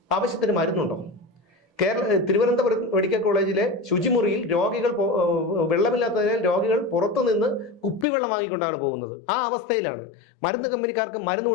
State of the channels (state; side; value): drops out; right; at 8.1 s